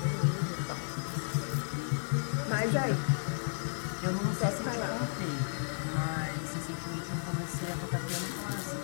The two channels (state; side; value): silent; right; digital silence